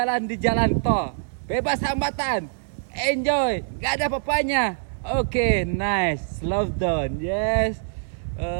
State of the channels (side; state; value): left; silent; 62 dB below the other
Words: di jalan tol, bebas hambatan, enjoy, gak ada apa-apanya. Oke, nice, slow down, yes.